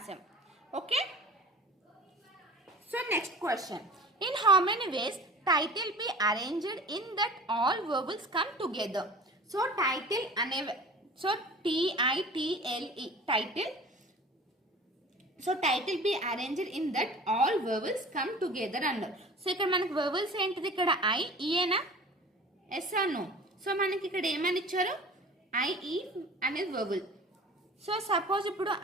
okay so next question in how many ways title be arranged in that all vowels come together so title ane so title title so title be arranged in that all vowels come together అన్నారు so ఇక్కడ మనకి vowels ఏంటిది ఇక్కడ I E ఏనా yes or no so మనకి ఇక్కడ ఏమని ఇచ్చారు I E అనేది vowel సో సపోజ్ ఇప్పుడు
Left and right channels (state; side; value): normal; both; correlation 0.41